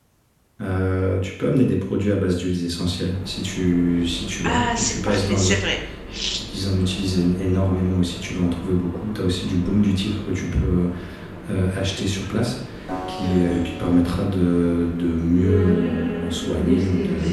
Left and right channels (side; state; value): both; identical; correlation 1.00